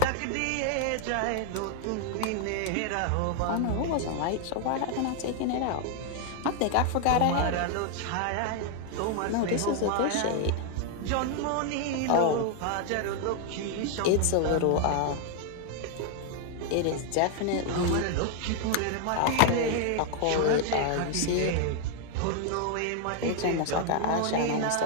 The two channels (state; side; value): different; both; correlation 0.00